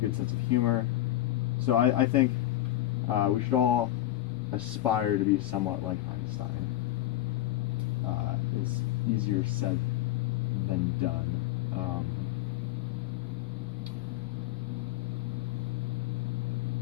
sense of humor. So I think we should all aspire to be somewhat like Einstein. It's easier said than done.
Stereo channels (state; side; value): quieter; right; 14.4 dB